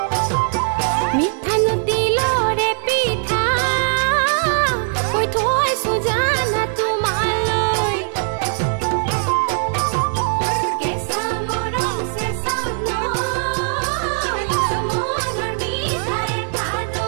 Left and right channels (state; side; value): silent; left; digital silence